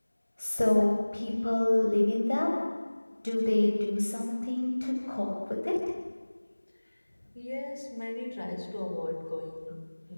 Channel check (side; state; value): both; inverted; correlation -1.00